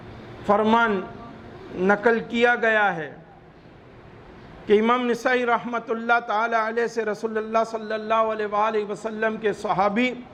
فرمان نقل کیا گیا ہے کہ امام نسائی رحمت اللہ تعالی علیہ سے رسول اللہ صلی اللہ علیہ وآلہ وسلم کے صحابی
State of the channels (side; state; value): both; identical; correlation 1.00